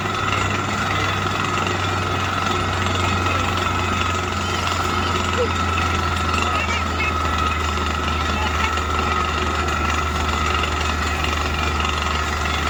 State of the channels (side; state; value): both; identical; correlation 1.00